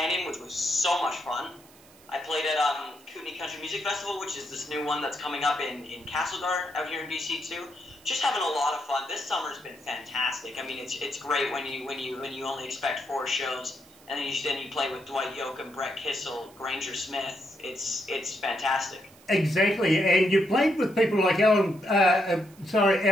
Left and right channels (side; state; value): right; noise; hiss, 25 dB below the sound